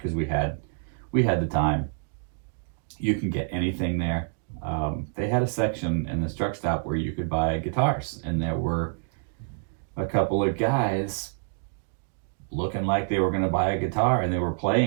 we had the time. You can get anything there. They had a section in this truck stop where you could buy guitars, and there were a couple of guys looking like they were going to buy a guitar, and they were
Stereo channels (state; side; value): silent; left; digital silence